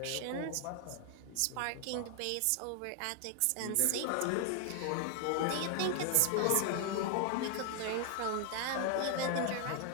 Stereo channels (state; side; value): different; both; correlation 0.00